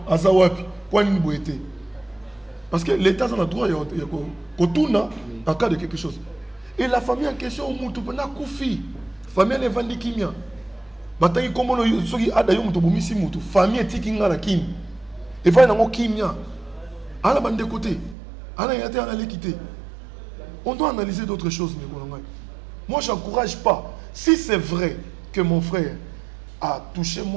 azawapi, quoi ni boété. Parce que l'État a le droit de en cas de quelque chose. Et la famille en question, Moutoupena Koufi. Famille n'est vendue kimia. Bataille comme on soki adayo muto bomisi muto. Famille tikinga na kim. Et va nango kimia. À la bande de côté. À la yate à l'équité. On doit analyser d'autres choses, moi j'encourage pas. Si c'est vrai que mon frère a touché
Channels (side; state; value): left; drops out; at 18.2 s